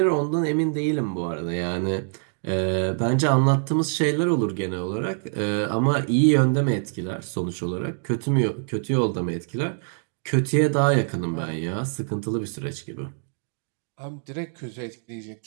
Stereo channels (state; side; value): silent; left; 62 dB below the other